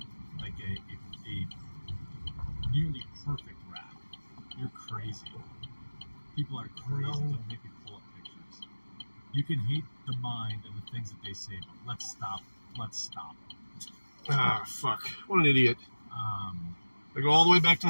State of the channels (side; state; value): both; inverted; correlation -1.00